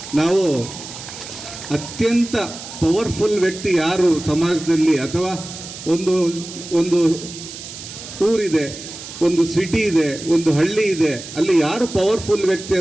ನಾವು ಅತ್ಯಂತ ಪವರ್ಫುಲ್ ವ್ಯಕ್ತಿ ಯಾರು ಸಮಾಜದಲ್ಲಿ, ಅಥವಾ ಒಂದು ಊರಿದೆ, ಒಂದು ಸಿಟಿ ಇದೆ, ಒಂದು ಹಳ್ಳಿ ಇದೆ, ಅಲ್ಲಿ ಯಾರು ಪವರ್ಫುಲ್ ವ್ಯಕ್ತಿ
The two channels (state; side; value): noise; right; hiss, 12 dB below the sound